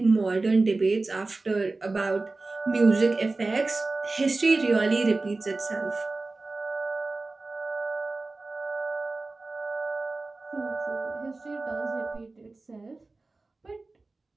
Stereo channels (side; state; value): left; quieter; 3.4 dB